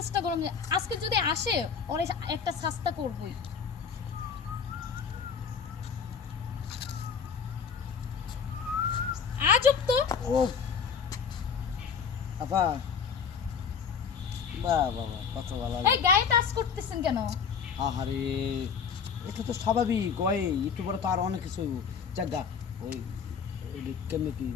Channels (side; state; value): right; quieter; 6.4 dB